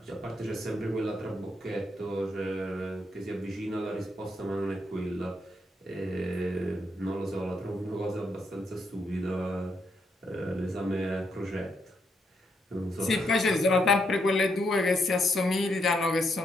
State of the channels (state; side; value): normal; both; correlation 0.78